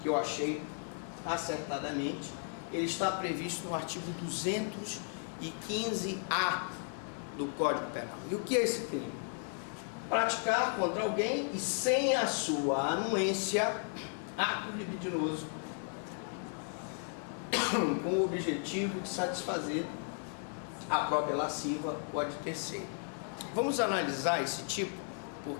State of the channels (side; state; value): right; silent; 54 dB below the other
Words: que eu achei acertadamente, ele está previsto no artigo 215-A do Código Penal. E o que é esse crime? Praticar contra alguém e sem a sua anuência ato libidinoso com o objetivo de satisfazer a própria lasciva ou a de terceiro. Vamos analisar esse tipo